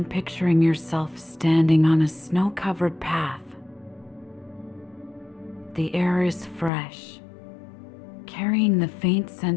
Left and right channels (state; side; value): drops out; right; at 6.7 s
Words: picturing yourself standing on a snow-covered path. The air is fresh, carrying the faint